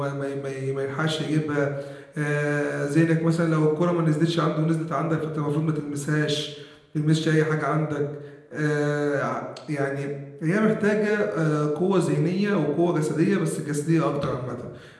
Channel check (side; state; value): both; identical; correlation 1.00